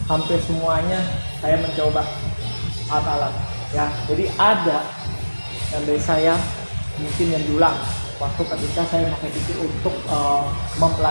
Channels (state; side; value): inverted; both; correlation -1.00